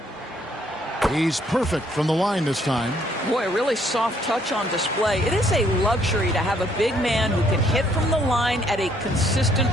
He's perfect from the line this time. Boy, a really soft touch on display. It is a luxury to have a big man who can hit from the line at a consistent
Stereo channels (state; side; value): normal; both; correlation 0.67